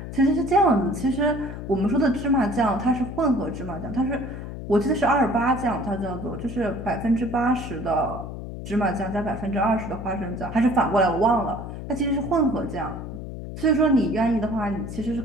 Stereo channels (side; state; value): left; noise; hum, 9 dB below the sound